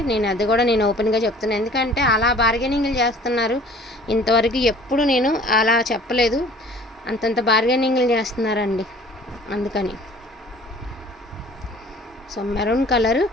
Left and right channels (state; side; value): normal; both; correlation 0.50